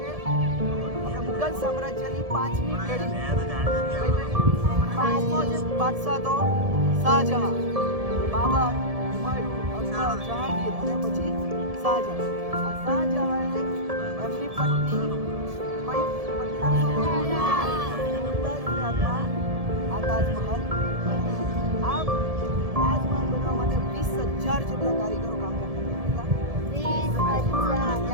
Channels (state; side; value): late; left; 1.7 ms